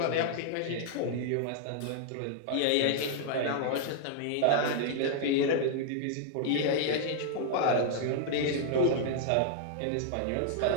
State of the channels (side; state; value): both; different; correlation -0.01